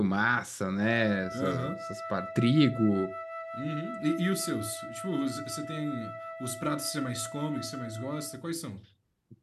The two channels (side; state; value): both; identical; correlation 1.00